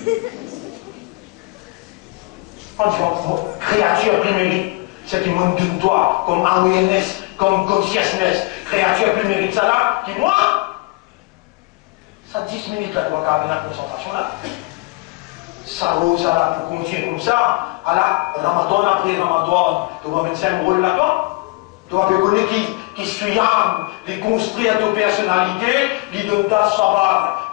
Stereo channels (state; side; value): quieter; right; 24.4 dB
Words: On dit, créature primaire, c'est qui monte de toi, comme awareness, comme consciousness, créature primaire, ça là, qui moi, ça 10 minutes là, tu vas avoir la concentration là. Ça là, pour continuer comme ça, à la Ramadan après Ramadan, tu vas mettre un rôle là-dedans. Tu vas connaître qui suit âme, qui construit à ta personnalité, qui donne ta savoir,